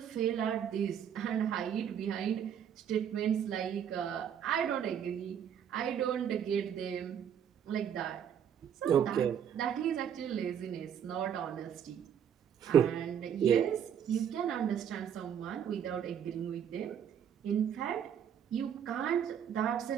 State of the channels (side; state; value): left; quieter; 8.8 dB